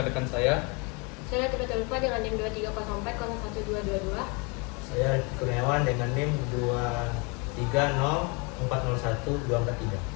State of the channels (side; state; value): right; quieter; 30.7 dB